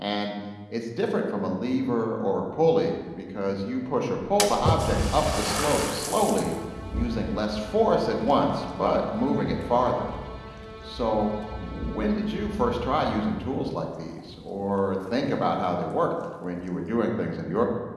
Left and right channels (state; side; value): identical; both; correlation 1.00